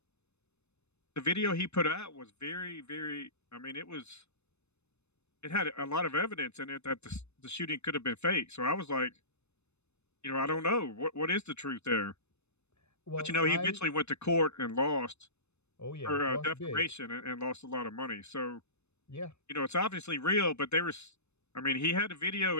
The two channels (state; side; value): late; right; 0.81 ms